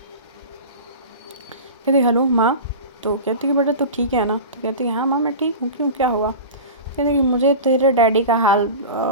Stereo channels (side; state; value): both; inverted; correlation -0.31